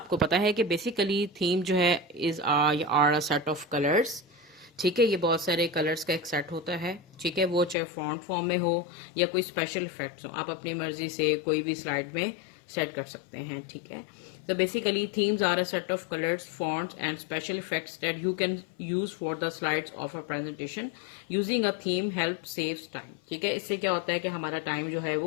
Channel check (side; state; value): right; drops out; at 7.8 s